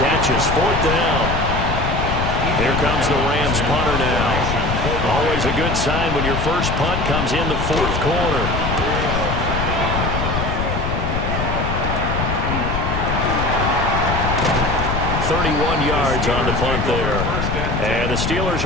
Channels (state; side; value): noise; left; rumble, 1 dB below the sound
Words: catches. 4th down. Here comes the Rams punter now. Always a good sign when your first punt comes in the 4th quarter. 31 yards on the punt there. And the Steelers